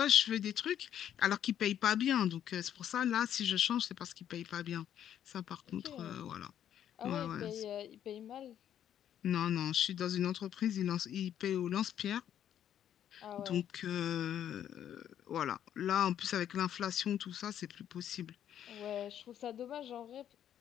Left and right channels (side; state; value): right; quieter; 10.2 dB